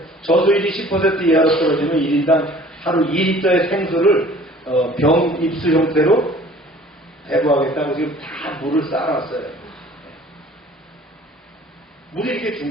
저수율이 10% 이하로 떨어지면 1인당 하루 2리터의 생수를 병 입수 형태로 배부하겠다고 지금 다 물을 쌓아놨어요. 물이 이렇게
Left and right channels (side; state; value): both; normal; correlation 0.50